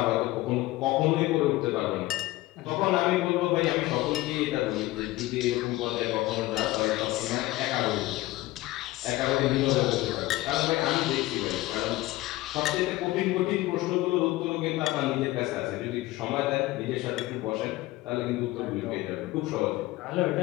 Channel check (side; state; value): right; quieter; 18.2 dB